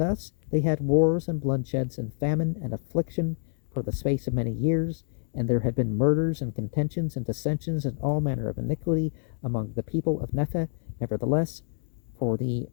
they had wars and bloodsheds and famine and affliction for the space of many years. And there had been murders and contentions and dissensions and all manner of iniquity among the people of Nephi. Nevertheless, for the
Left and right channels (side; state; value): right; silent; 60 dB below the other